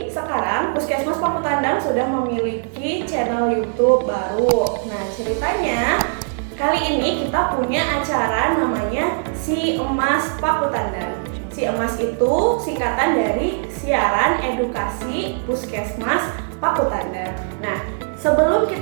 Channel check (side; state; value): left; silent; digital silence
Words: sekarang Puskesmas Pakutandang sudah memiliki channel YouTube baru. Nah, ceritanya kali ini kita punya acara namanya Si Emas Pakutandang. Si Emas itu singkatan dari Siaran Edukasi Puskesmas Pakutandang. Nah, sebelum